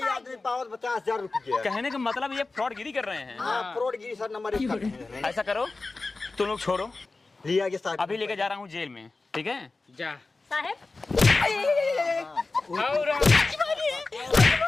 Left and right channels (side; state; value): right; quieter; 3.6 dB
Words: आदमी पावत 50,000 रुपये। कहने का मतलब ये फ्रॉडगिरी कर रहे हैं। हाँ फ्रॉडगिरी सर नंबर 1। ऐसा करो तुम लोग छोड़ो लिया के साथ अभी लेके जा रहा हूँ जेल में ठीक है जा साहब